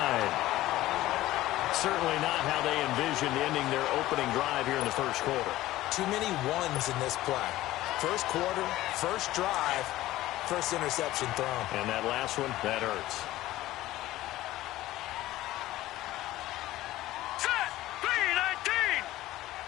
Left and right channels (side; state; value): right; quieter; 15.9 dB